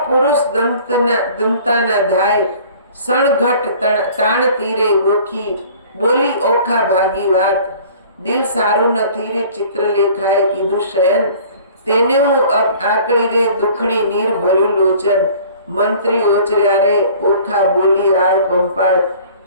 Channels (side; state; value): both; inverted; correlation -0.49